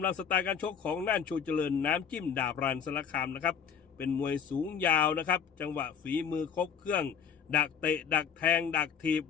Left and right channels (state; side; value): quieter; right; 7.3 dB